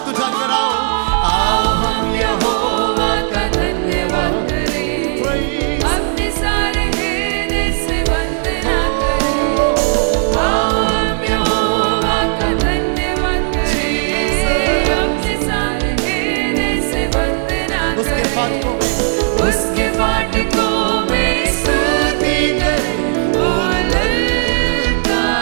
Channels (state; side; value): silent; left; 61 dB below the other